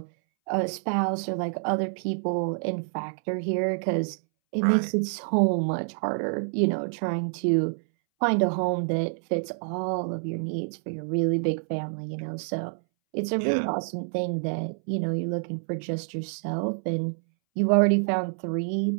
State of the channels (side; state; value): left; silent; 60 dB below the other